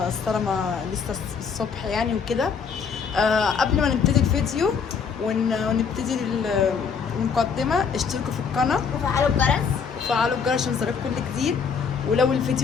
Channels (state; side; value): quieter; right; 6.1 dB